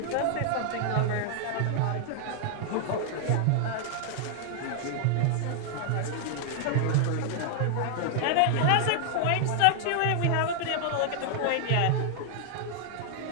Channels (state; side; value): different; both; correlation 0.00